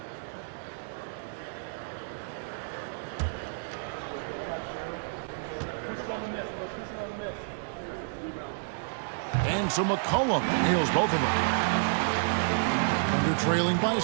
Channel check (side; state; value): left; silent; digital silence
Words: And so McCollum nails both of them. Thunder trailing by